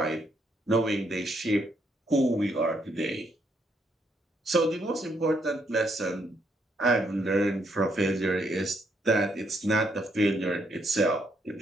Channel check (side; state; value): both; normal; correlation 0.74